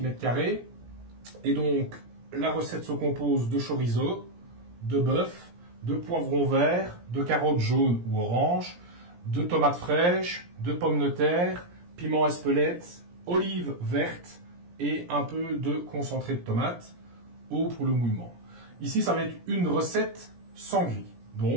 Et donc, la recette se compose de chorizo, de bœuf, de poivrons verts, de carottes jaunes ou oranges, de tomates fraîches, de pommes de terre, piment espelette, olives vertes, et un peu de concentré de tomate, eau pour le mouillement. Ici, ça va être une recette sans gris,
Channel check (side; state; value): left; late; 17 ms